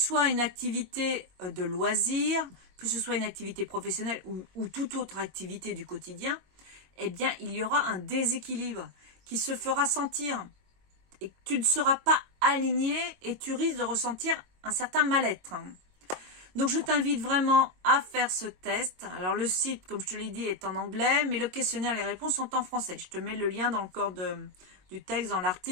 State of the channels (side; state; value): left; late; 22 ms